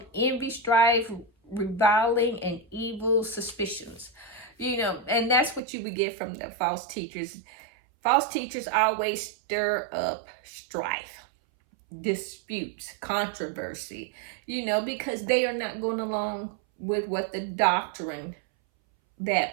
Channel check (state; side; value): drops out; left; at 5.6 s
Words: envy, strife, reviling, and evil suspicions. You know, and that's what you would get from the false teachers. False teachers always stir up strife, disputes, controversy, you know, because they are not going along with what the doctrine